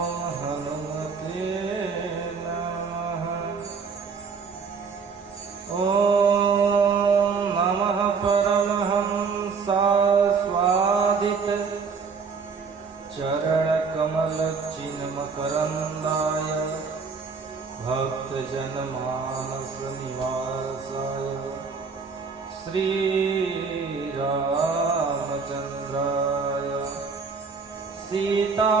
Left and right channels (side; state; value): left; quieter; 5.3 dB